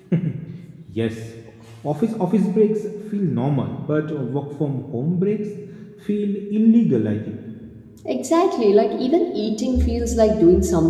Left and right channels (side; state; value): both; identical; correlation 1.00